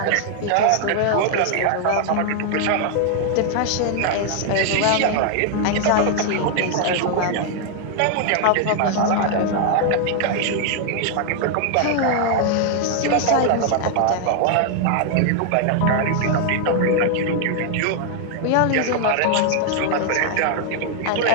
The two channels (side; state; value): both; different; correlation 0.00